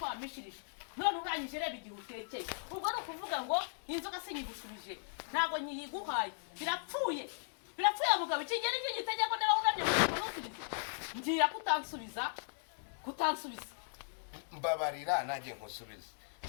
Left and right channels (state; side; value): silent; right; digital silence